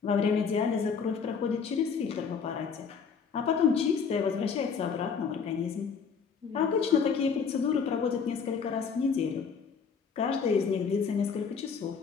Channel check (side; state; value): right; quieter; 6.1 dB